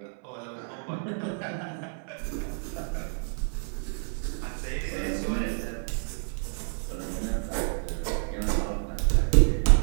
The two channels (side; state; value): left; silent; 59 dB below the other